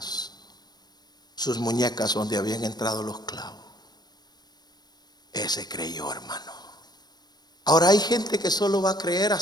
sus muñecas donde habían entrado los clavos, ese creyó, hermano. Ahora hay gente que solo va a creer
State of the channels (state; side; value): late; right; 0.20 ms